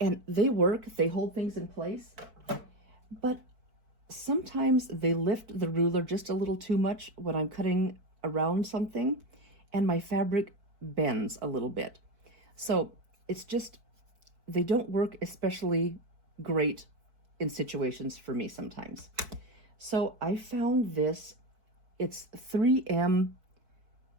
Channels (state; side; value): late; left; 4.6 ms